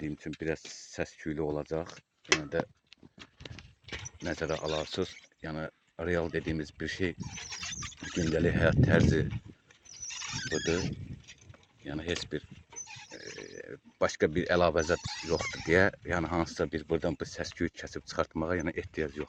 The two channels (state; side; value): identical; both; correlation 1.00